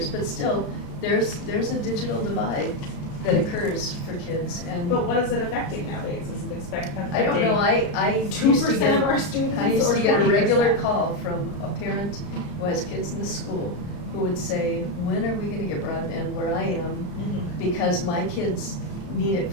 but still, there's a digital divide that occurs for kids, and But what is it affecting nowadays? Is it affecting? I don't know, I used to 2% get, of our students I used or to get a 20%? regular call from a parent who has kids in the school, who would say, when are we gonna get broadband where I am? Because my kids need it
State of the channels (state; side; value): late; right; 34 ms